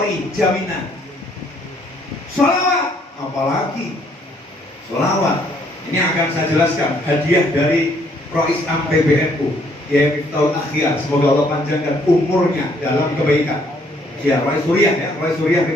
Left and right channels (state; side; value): normal; both; correlation 0.66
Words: jaminan. Sholawat, apalagi sholawat. Ini akan saya jelaskan hadiah dari Rois Am PBNU, ya Miftahul Akhyar. Semoga Allah panjangkan umurnya dalam kebaikan. Ya, Rois Suriah ya, Rois Suriah